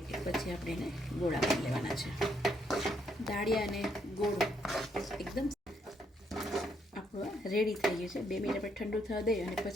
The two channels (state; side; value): normal; both; correlation 0.74